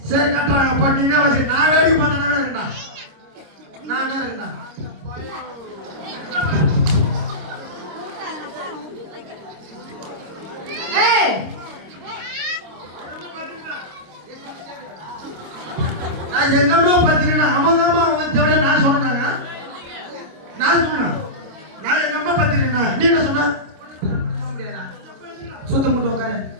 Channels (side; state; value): left; late; 25 ms